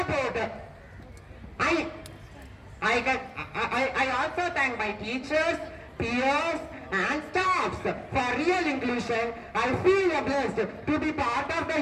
I also thank my teachers, peers and staffs for real inclusion. I feel blessed to be part of the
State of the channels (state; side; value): identical; both; correlation 1.00